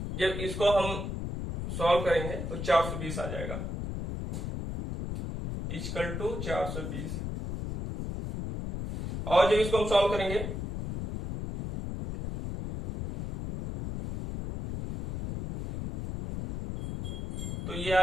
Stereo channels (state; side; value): noise; left; rumble, 5 dB below the sound